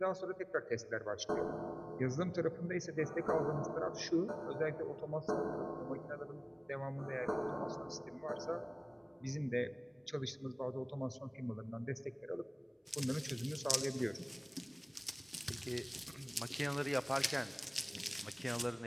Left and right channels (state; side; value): identical; both; correlation 1.00